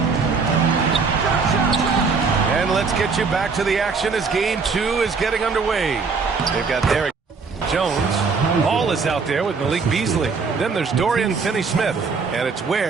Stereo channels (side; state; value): left; quieter; 4.9 dB